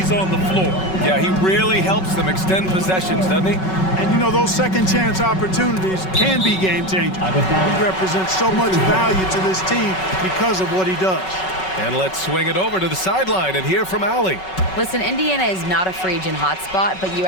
on the floor. Yeah, he really helps them extend possessions, doesn't he? And you know, those second chance opportunities can be game changing. He represents so much value to this team because of what he does. And let's swing it over to the sideline and hear from Allie. Listen, Indiana is not a free agent hotspot, but you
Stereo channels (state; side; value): late; right; 5.3 ms